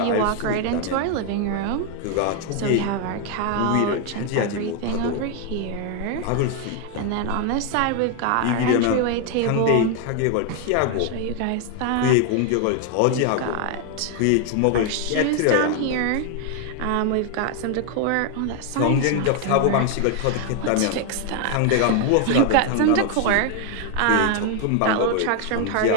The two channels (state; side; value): different; both; correlation 0.00